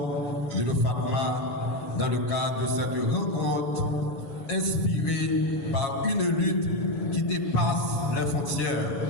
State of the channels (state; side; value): late; right; 7.3 ms